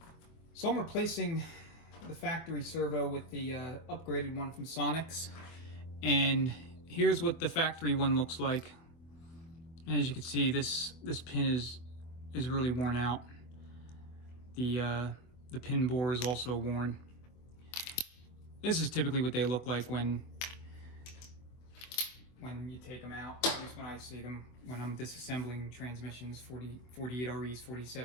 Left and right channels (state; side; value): late; right; 24 ms